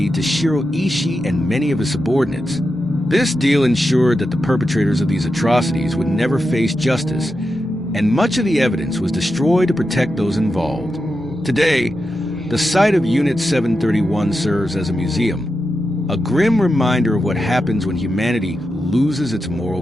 to Shiro Ishii and many of his subordinates. This deal ensured that the perpetrators of these atrocities would never face justice, and much of the evidence was destroyed to protect those involved. Today, the site of Unit 731 serves as a museum, a grim reminder of what happens when humanity loses its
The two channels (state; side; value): normal; both; correlation 0.89